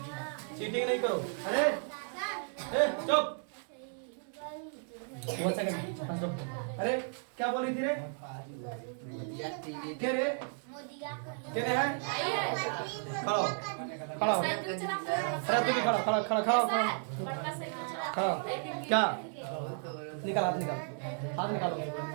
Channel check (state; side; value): silent; left; 55 dB below the other